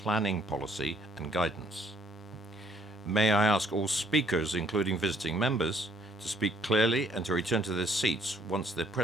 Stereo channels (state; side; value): normal; both; correlation 0.63